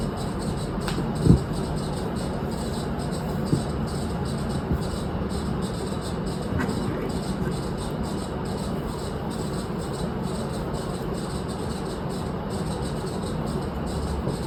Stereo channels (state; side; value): identical; both; correlation 1.00